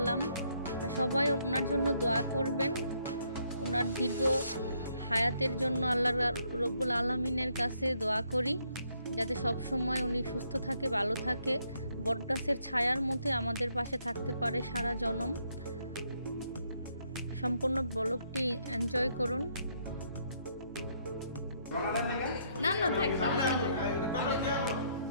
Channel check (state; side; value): inverted; both; correlation -0.72